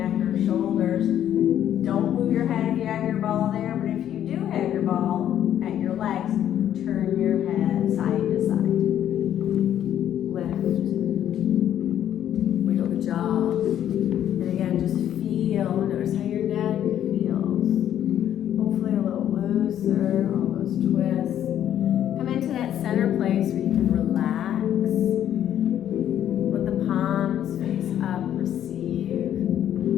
or shoulders. Don't move your head if you have your ball there, but if you do have your ball at your legs, turn your head side to side. Lift. Wiggle the jaw. And again, just feel, notice how your neck feels. Hopefully a little looser, all those twists. Come into that center place where you can relax. Let the palms face up, receive.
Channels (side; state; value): right; quieter; 10.7 dB